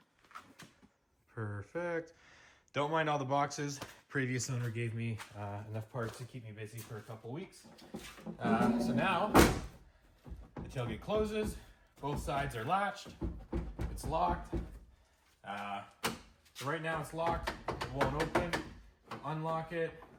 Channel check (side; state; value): both; identical; correlation 1.00